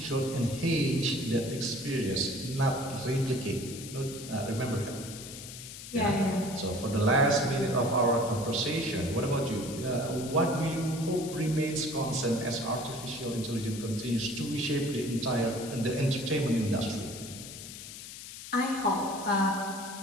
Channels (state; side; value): noise; left; hiss, 12 dB below the sound